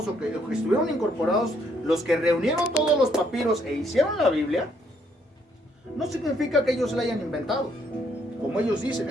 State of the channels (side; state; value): both; normal; correlation 0.70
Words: o que estuvieron incorporados, los que reunieron todos los papiros e hicieron la Biblia, no significa que ellos la hayan inventado. Como ellos dicen,